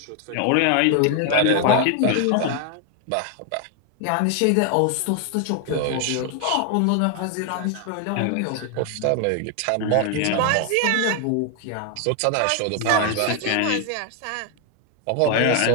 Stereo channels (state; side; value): different; both; correlation 0.01